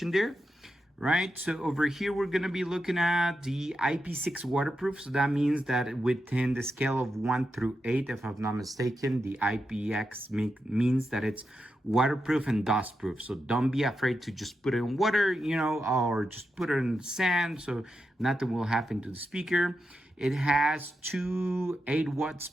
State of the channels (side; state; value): both; normal; correlation 0.87